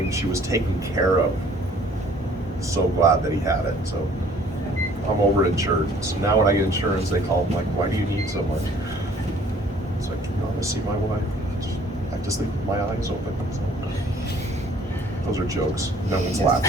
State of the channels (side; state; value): both; normal; correlation 0.56